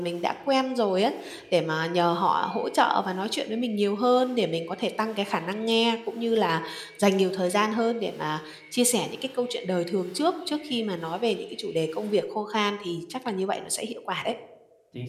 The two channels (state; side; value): identical; both; correlation 1.00